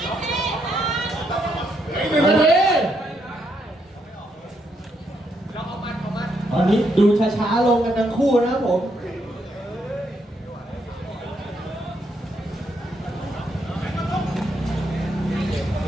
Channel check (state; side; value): normal; both; correlation 0.77